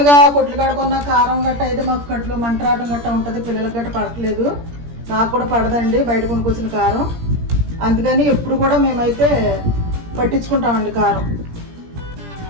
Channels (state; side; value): late; left; 17 ms